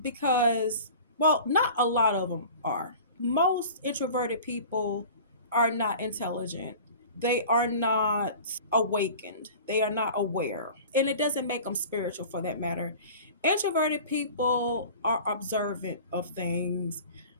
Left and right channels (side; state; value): both; inverted; correlation -0.40